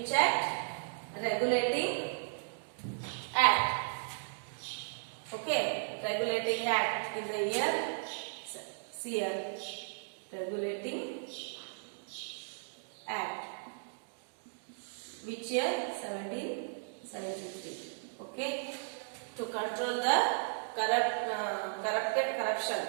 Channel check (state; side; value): silent; left; digital silence